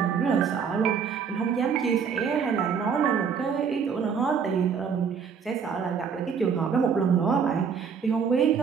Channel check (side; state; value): left; quieter; 6.6 dB